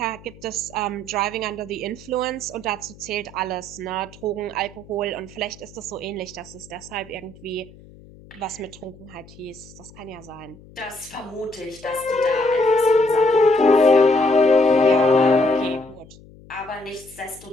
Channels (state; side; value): noise; left; hum, 22 dB below the sound